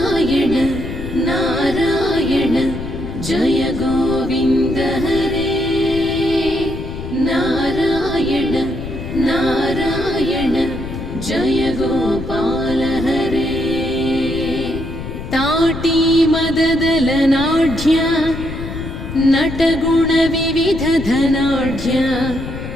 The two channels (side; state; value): left; noise; rumble, 8 dB below the sound